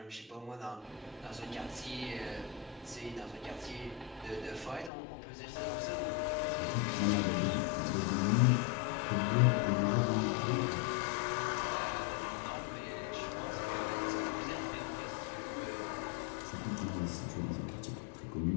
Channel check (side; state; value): right; drops out; at 4.9 s